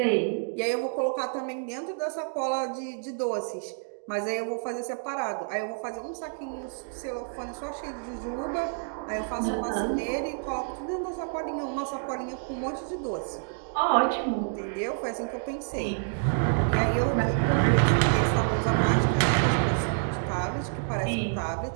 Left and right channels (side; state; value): left; silent; digital silence